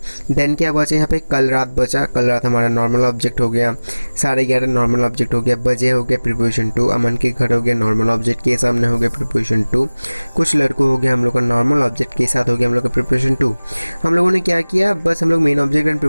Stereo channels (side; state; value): both; inverted; correlation -1.00